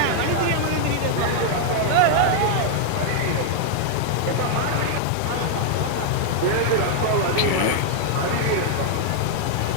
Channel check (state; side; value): different; both; correlation 0.00